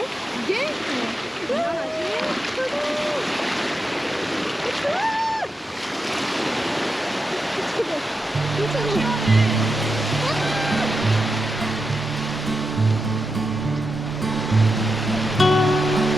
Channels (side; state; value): both; normal; correlation 0.87